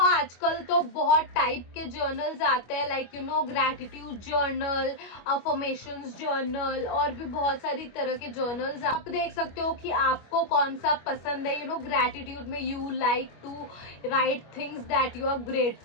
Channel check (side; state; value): right; late; 25 ms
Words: आजकल तो बहुत टाइप के जर्नल्स आते हैं, like you know gratitude journal, affirmations journal, और भी बहुत सारी तरह के जर्नल्स आप देख सकते हो कि आपको कौन सा पसंद है। You know gratitude में you like to write things that you are